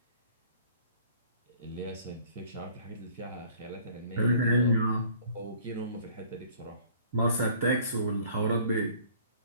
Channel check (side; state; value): both; inverted; correlation -0.54